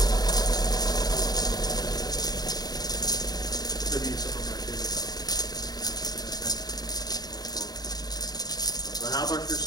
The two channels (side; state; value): right; late; 0.19 ms